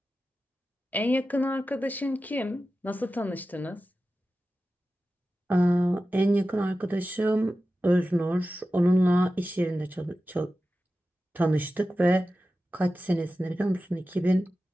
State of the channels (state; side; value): normal; both; correlation 0.93